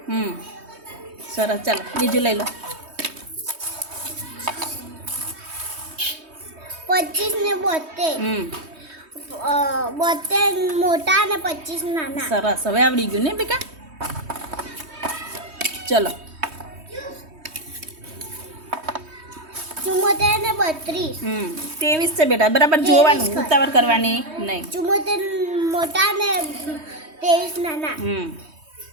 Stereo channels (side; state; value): left; late; 3.2 ms